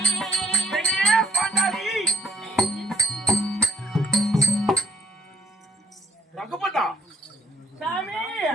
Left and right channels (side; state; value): both; normal; correlation 0.66